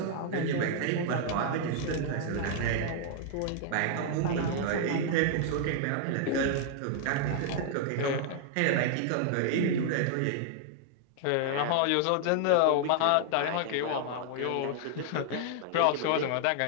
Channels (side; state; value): both; different; correlation -0.01